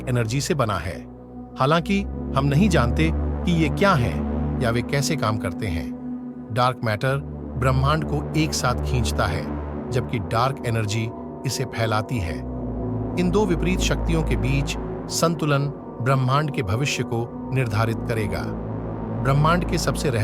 एनर्जी से बना है। हालांकि हम नहीं जानते कि ये क्या हैं या वे कैसे काम करते हैं। डार्क मैटर ब्रह्मांड को एक साथ खींचता है, जबकि डार्क एनर्जी इसे फैलाती है। इन दो विपरीत शक्तियों के बीच संतुलन ब्रह्मांड के भविष्य को निर्धारित करेगा। ब्रह्मांड के सबसे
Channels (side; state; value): both; identical; correlation 1.00